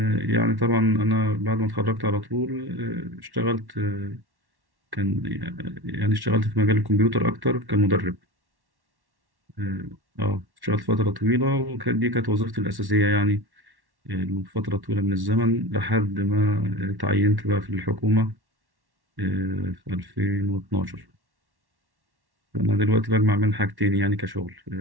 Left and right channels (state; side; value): late; left; 1.1 ms